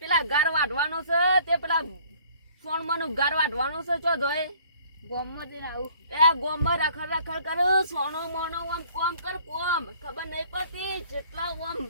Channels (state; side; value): inverted; both; correlation -0.56